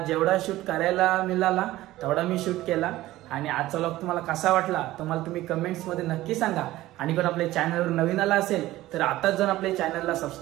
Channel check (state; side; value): quieter; left; 16.3 dB